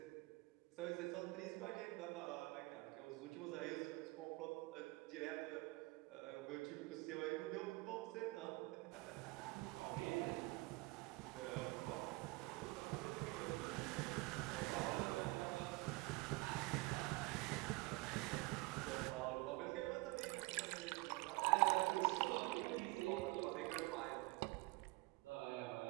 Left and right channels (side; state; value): left; quieter; 24.3 dB